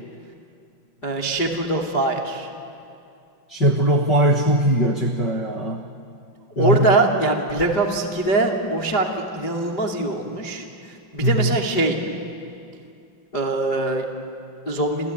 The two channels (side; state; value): right; late; 5.0 ms